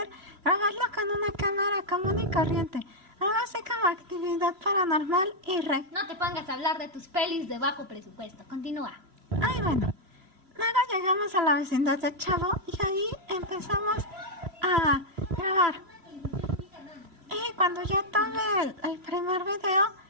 grabarlo con una cámara común y corriente, algo así como actividad paranormal y No te pongas a hablar de tus pelis de bajo presupuesto. Continúa. Ay, bueno. Luego llegamos a la vecindad de Chavo y ahí empezamos a grabar. Y cuando ya tuve el primer video,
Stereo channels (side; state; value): left; late; 3.0 ms